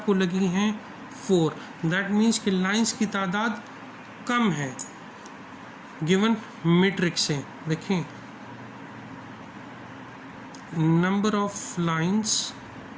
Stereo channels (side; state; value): both; identical; correlation 1.00